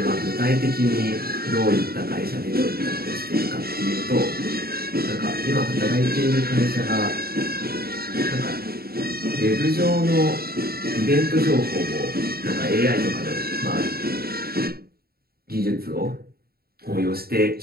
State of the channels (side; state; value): left; late; 0.45 ms